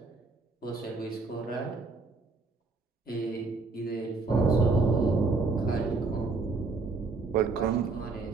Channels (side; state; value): left; quieter; 3.9 dB